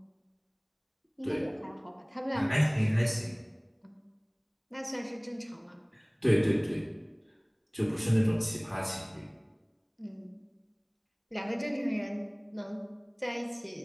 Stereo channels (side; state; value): both; identical; correlation 1.00